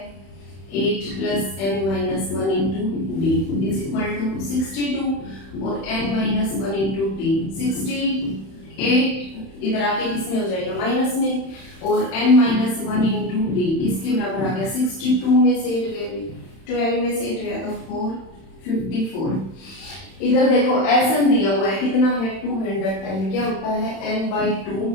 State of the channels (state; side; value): late; right; 31 ms